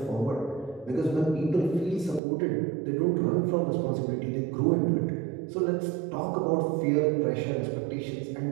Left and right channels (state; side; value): drops out; left; at 2.2 s